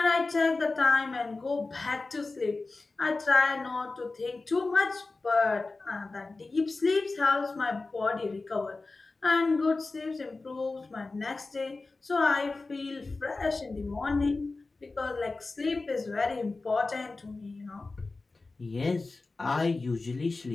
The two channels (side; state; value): right; quieter; 3.6 dB